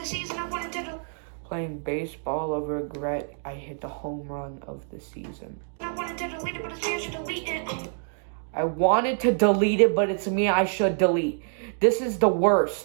Playing baseball over regret. I hit the home run of the season. I wanted to delete it, but it's me I should delete. This is the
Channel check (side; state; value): left; silent; 60 dB below the other